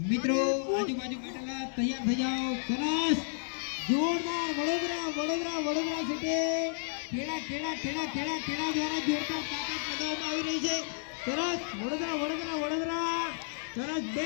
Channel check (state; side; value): silent; right; digital silence